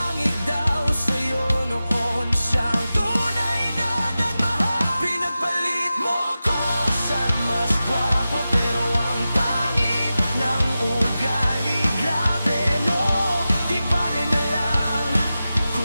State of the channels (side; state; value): both; inverted; correlation -0.94